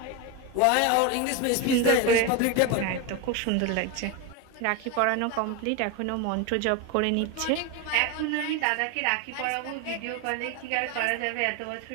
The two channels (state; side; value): different; both; correlation 0.02